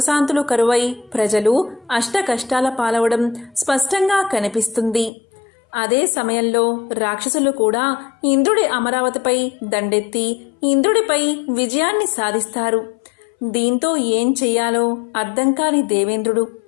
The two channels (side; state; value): right; drops out; at 5.1 s